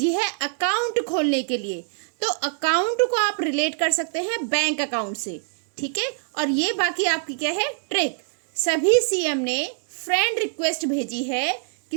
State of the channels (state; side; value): silent; left; 63 dB below the other